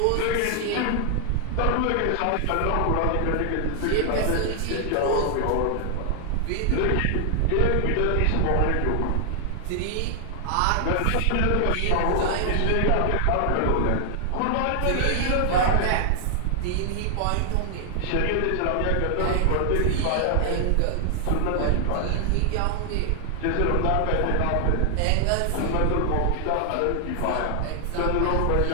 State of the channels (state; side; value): different; both; correlation 0.00